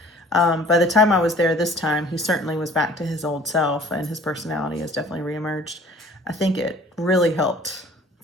By the time I was there this time, he certainly was back to his old self, and his personality has definitely reemerged. I think it really helped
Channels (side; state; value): both; normal; correlation 0.51